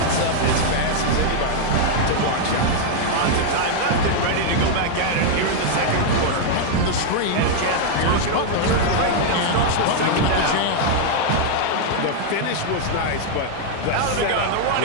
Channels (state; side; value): different; both; correlation 0.00